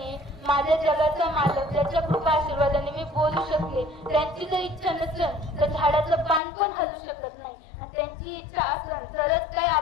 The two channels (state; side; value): drops out; right; at 6.4 s